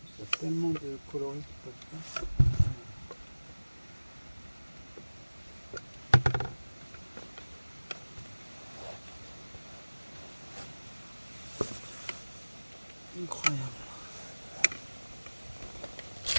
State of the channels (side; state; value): both; inverted; correlation -1.00